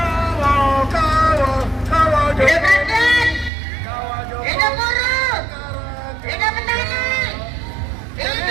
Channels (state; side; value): drops out; left; at 3.5 s